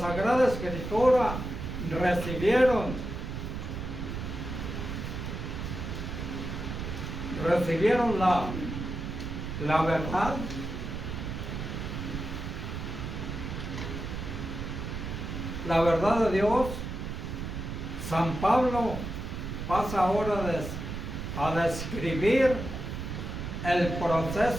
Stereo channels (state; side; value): noise; right; rumble, 5 dB below the sound